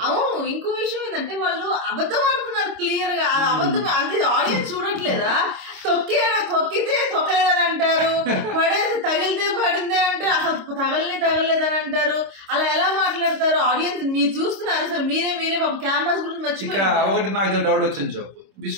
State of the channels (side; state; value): left; late; 26 ms